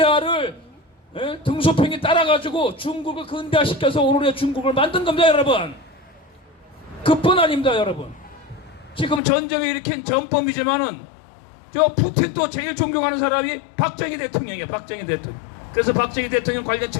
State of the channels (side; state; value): right; drops out; at 9.2 s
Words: 등소평이 따라가지고 중국을 근대화시켜서 오늘의 중국을 만든 겁니다, 여러분. 그뿐 아닙니다, 여러분. 지금 전쟁을 일으킨 전범이지만은 저 푸틴도 제일 존경하는 사람이 박정희 대통령이에요. 박정희 대통령. 그래서 박정희 대통령 관련